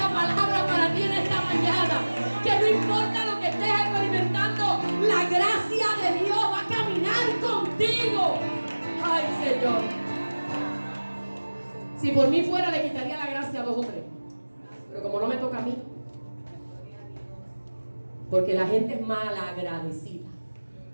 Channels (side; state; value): both; inverted; correlation -1.00